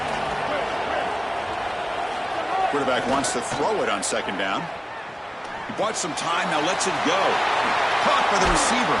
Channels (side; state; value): both; identical; correlation 1.00